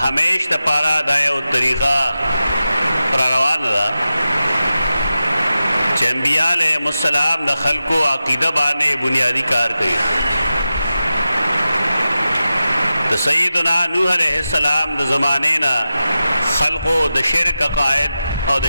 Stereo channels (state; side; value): inverted; both; correlation -0.92